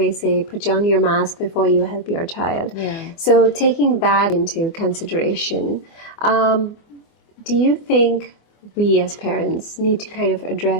say, put on your mask before you help your child. Yeah. So taking that into consideration, do you think we as parents need to kind of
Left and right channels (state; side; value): late; right; 24 ms